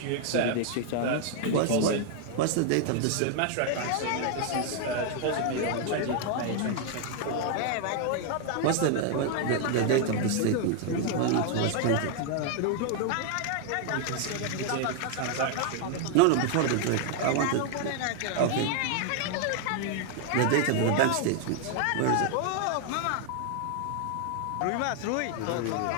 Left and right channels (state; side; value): different; both; correlation 0.00